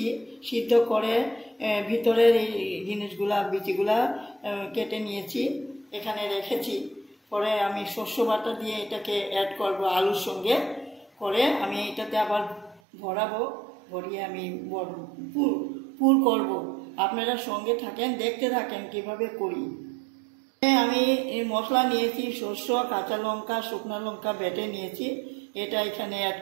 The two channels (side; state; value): left; drops out; at 12.8 s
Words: সিদ্ধ করে ভিতরের এই জিনিসগুলা বিচিগুলা কেটে নিয়েছি, এখানে রেখেছি। পরে আমি শস্য বাটা দিয়ে এটাকে অ্যাড করব আলুর সঙ্গে করে। আমি এটাতে আবার ভরাবো, ভরিয়ে আমি পুর করব। আপনারা সঙ্গে থাকেন, দেখতে থাকেন কিভাবে করি। আমি মশলা নিয়েছি, সরষে, কাঁচা লঙ্কা, শুকনো লঙ্কা বেটে নিয়েছি, এটা এখানে অ্যাড